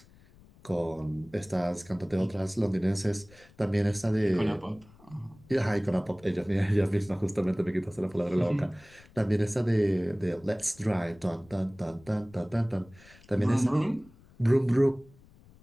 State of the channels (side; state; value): left; noise; rumble, 25 dB below the sound